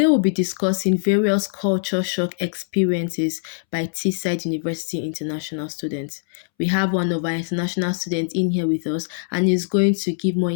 we'll be discussing various culture shock experiences by Teesside University international students. We have one of our international students in here with us and he's going to give more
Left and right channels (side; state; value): right; silent; 64 dB below the other